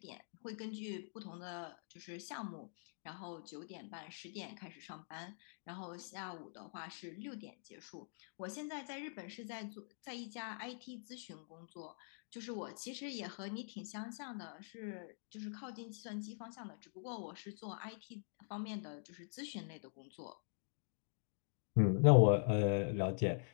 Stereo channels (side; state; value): right; silent; digital silence